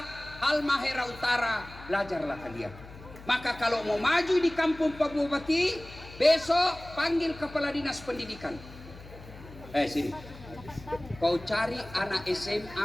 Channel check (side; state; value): left; noise; hum, 17 dB below the sound